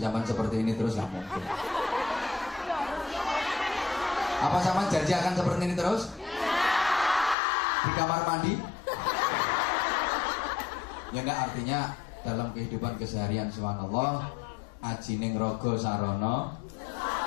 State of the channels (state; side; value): drops out; right; at 7.4 s